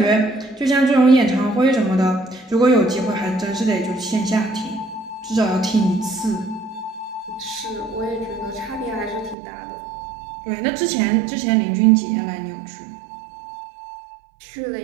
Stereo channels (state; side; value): drops out; left; at 9.3 s